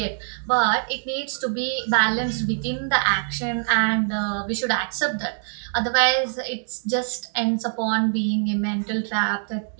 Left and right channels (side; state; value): left; silent; digital silence